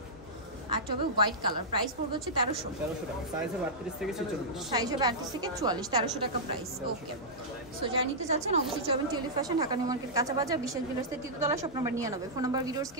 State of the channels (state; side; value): normal; both; correlation -0.11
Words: একটা হবে হোয়াইট কালার, প্রাইস পড়বে হচ্ছে 1300 টাকা। সাইজ হবে 38 থেকে 46। সাইজ হবে 38 থেকে 44, 1300 টাকা প্রাইস। ওকে, সো যারা নিতে চাচ্ছেন অবশ্যই যাবেন Tulip Fashion, Dhaka New Market, কাঁচা বাজার, বিশেষ বিলাসের তৃতীয়তলা, shop number 99। Phone number videos